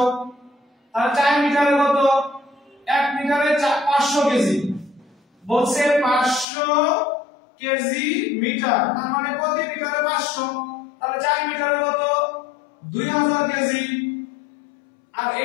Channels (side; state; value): right; drops out; at 6.5 s